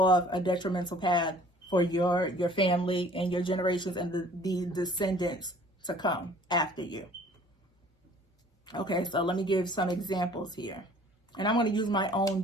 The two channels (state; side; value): normal; both; correlation 0.53